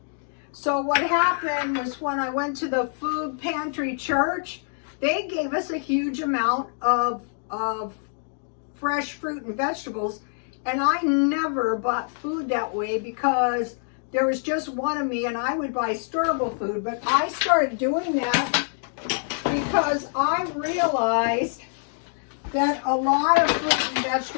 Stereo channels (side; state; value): right; silent; digital silence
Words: So what happened was, when I went to the food pantry church, they gave us a huge amount of fresh fruit and vegetables. And I never bought food that way, because there was just one of me and I would buy storable food. But I started doing that because I realized that a lot of fruit and